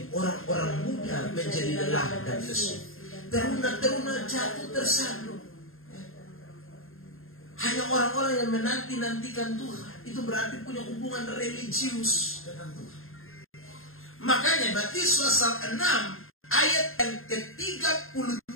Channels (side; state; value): right; late; 0.61 ms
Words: orang-orang muda menjadi lelah dan lesu, teruna-teruna jatuh tersaduk. Hanya orang-orang yang menanti-nantikan Tuhan, itu berarti punya hubungan religius dengan Tuhan. Makanya Matius pasal 6 ayat yang